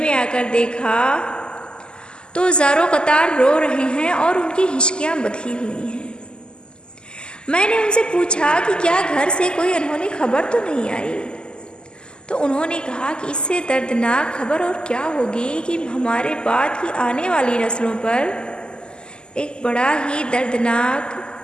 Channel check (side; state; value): right; late; 0.047 ms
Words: आकर देखा तो ज़ारो कतार रो रहे हैं और उनकी हिचकियाँ बंधी हुई हैं. मैंने उनसे पूछा कि क्या घर से कोई अनहोनी खबर तो नहीं आई. तो उन्होंने कहा कि इससे दर्दनाक खबर और क्या होगी कि हमारे बाद की आने वाली नस्लों पर एक बड़ा ही दर्दनाक